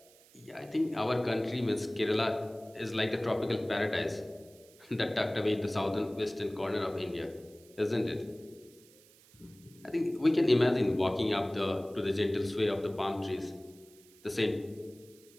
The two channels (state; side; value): noise; right; hiss, 26 dB below the sound